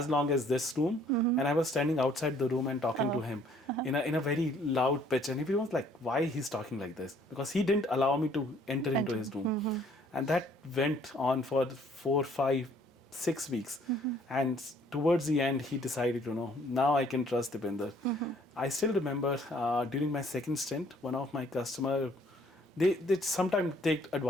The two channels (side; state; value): both; normal; correlation 0.61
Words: long as this room, and I was standing outside the room and talking to him in a very loud pitch, and everyone was like, why he's talking like this? Because he didn't allow me to enter into his room. And that went on for 4, 5, 6 weeks. And towards the end, he decided, now I can trust Deepinder. I still remember during my second stint, one of my customer, they sometimes take